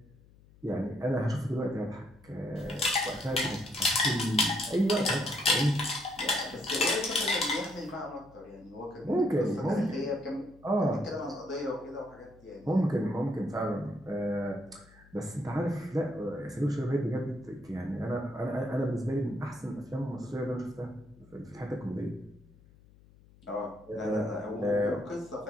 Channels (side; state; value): left; noise; hum, 25 dB below the sound